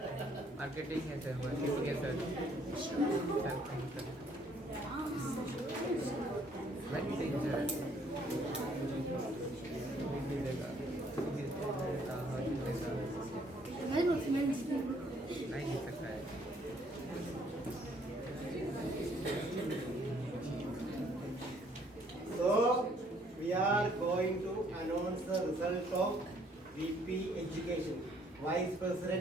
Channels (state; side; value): normal; both; correlation 0.64